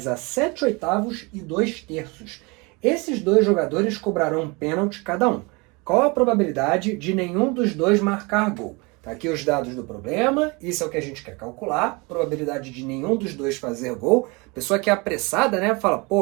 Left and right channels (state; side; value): quieter; left; 27.6 dB